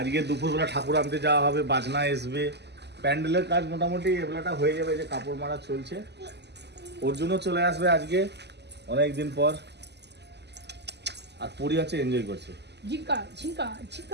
দুপুরবেলা ঠাকুর আনতে যাওয়া হবে, বাজনা আসবে, প্যান্ডেলের কাজ মোটামুটি এবেলাটা হয়ে যাবে, যে কাপড় মারা চলছে। অর্জুনও চলে আসবে আজকে অনেক দিন পর, আর পরি আছে এনজয় করছে।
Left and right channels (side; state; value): left; late; 0.50 ms